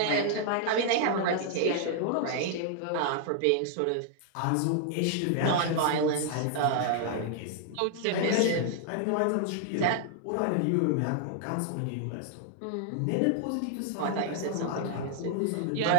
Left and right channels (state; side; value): different; both; correlation 0.00